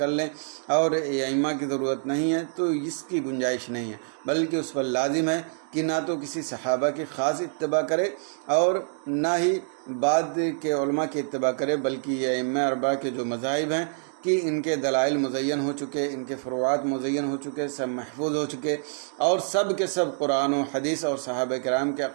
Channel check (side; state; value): left; silent; digital silence